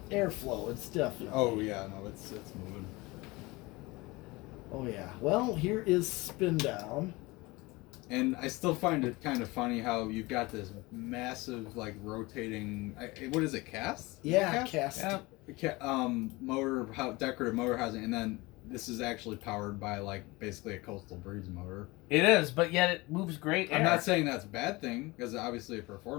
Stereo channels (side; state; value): right; quieter; 22.8 dB